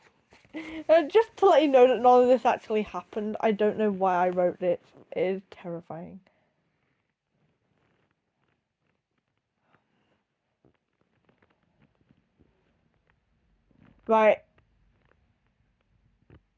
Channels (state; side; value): identical; both; correlation 1.00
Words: Just to let you know that none of this actually happened. I don't know why I wrote it. It is terrifying. Right.